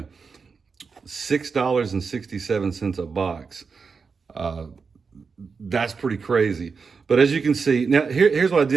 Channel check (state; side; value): quieter; left; 5.2 dB